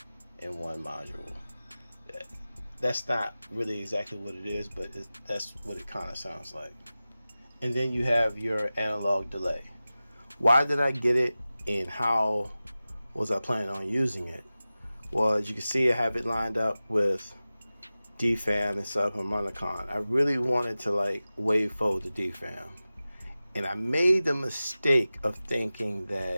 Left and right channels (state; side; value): inverted; both; correlation -0.96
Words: module. That's not really exactly what it is, but that's what it kind of sounds like. And then you have your analog delay. Why did I get it, and how was I planning on using it? Well, as you can see, I have it lined up with DFAM and subharmonicon. I really wanted to wavefold the DFAM, and I made the mistake of thinking